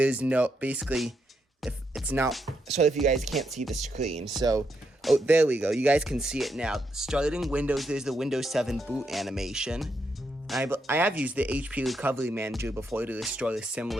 no, basically, if it's not, sorry if you guys can't see the screen. So, oh, there we go. You guys can see it now. Starting Windows, there's the Windows 7 boot animation. I have used the HP Recovery Manager before to restore a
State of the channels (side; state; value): both; normal; correlation 0.80